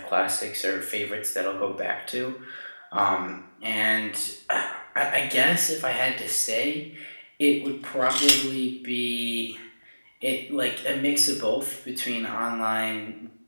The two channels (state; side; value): inverted; both; correlation -1.00